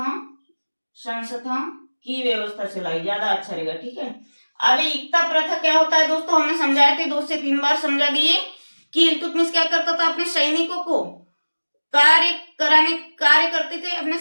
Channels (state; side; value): inverted; both; correlation -1.00